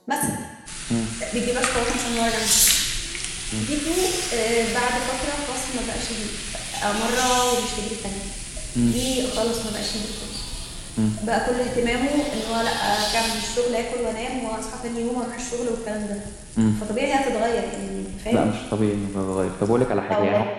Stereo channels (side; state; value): both; identical; correlation 1.00